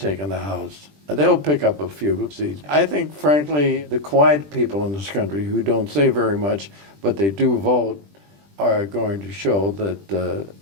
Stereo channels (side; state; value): left; late; 20 ms